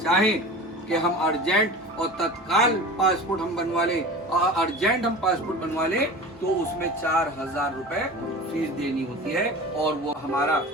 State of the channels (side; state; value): both; normal; correlation 0.35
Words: कि हम अर्जेंट और तत्काल पासपोर्ट हम बनवा लें, और अर्जेंट हम पासपोर्ट बनवा लें, तो उसमें 4000 रुपए फीस देनी होती है, और वो हमारा